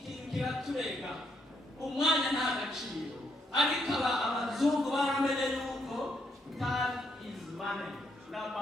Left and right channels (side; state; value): both; normal; correlation 0.75